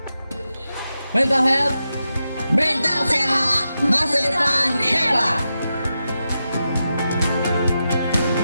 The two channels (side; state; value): both; inverted; correlation -0.89